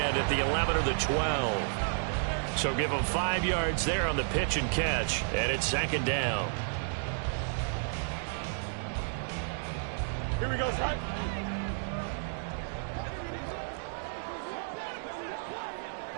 at the 11 or the 12. So give him 5 yards there on the pitch and catch, and it's 2nd down. Here we go, son.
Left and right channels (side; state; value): left; silent; digital silence